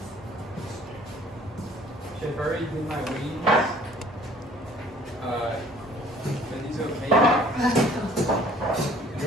I've already did my wings. Are these okay? You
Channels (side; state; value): both; normal; correlation 0.55